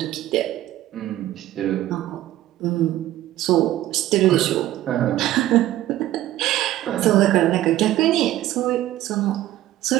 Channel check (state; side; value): quieter; left; 14.4 dB